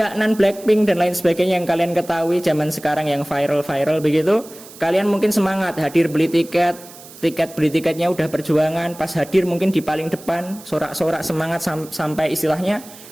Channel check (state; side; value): noise; right; hiss, 19 dB below the sound